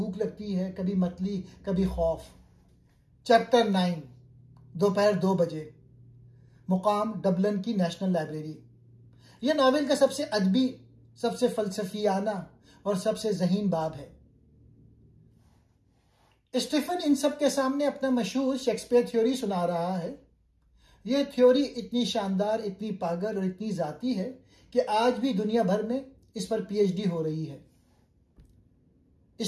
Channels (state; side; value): identical; both; correlation 1.00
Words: लगती है, कभी मतली, कभी खौफ। चैप्टर 9। दोपहर 2 बजे। मुकाम डबलिन की नेशनल लाइब्रेरी। यह नावल का सबसे अदबी, सबसे फलसफियाना और सबसे ज़हीन बाब है। स्टीफन इन सब के सामने अपना मशहूर शेक्सपियर थ्योरी सुना रहा है। यह थ्योरी इतनी शानदार, इतनी पागल और इतनी जाती है कि आज भी दुनिया भर में इस पर पीएचडी हो रही है।